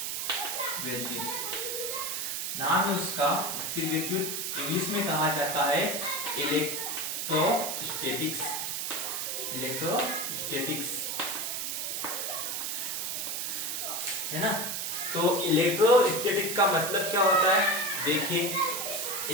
विद्युत। नाम है उसका स्थिर विद्युत। इंग्लिश में कहा जाता है इलेक्ट्रोस्टैटिक्स। है ना। तो इलेक्ट्रोस्टैटिक का मतलब क्या होता है, देखिए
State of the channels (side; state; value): right; noise; hiss, 2 dB below the sound